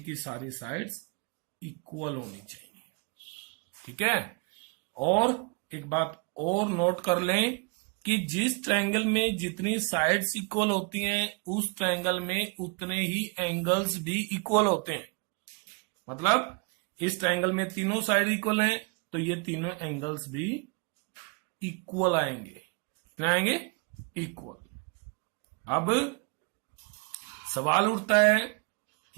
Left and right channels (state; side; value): quieter; left; 32.1 dB